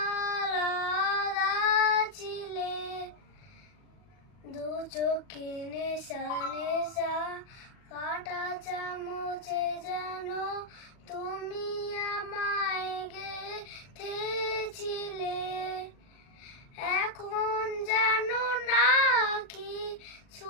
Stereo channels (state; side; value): late; right; 39 ms